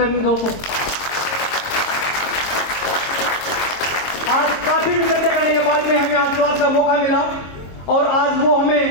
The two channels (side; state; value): right; late; 22 ms